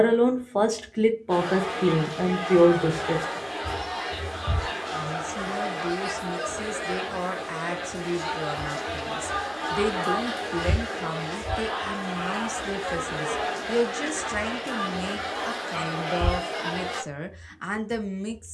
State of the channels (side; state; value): both; identical; correlation 1.00